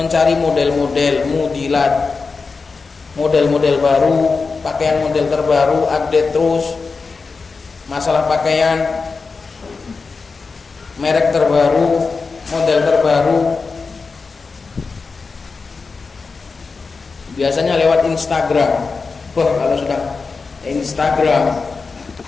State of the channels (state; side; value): quieter; right; 4.5 dB